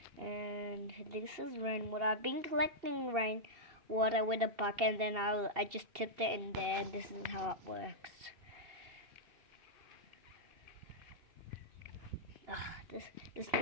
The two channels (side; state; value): left; late; 2.7 ms